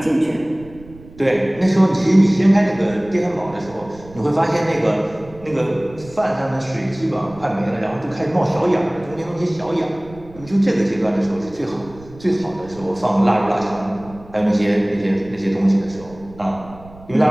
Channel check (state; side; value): noise; right; rumble, 20 dB below the sound